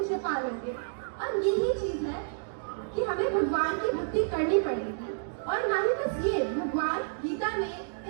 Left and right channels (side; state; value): left; silent; digital silence